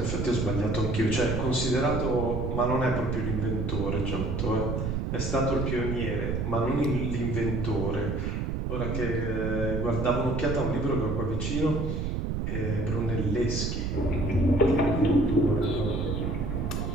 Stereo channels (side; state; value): right; noise; rumble, 1 dB below the sound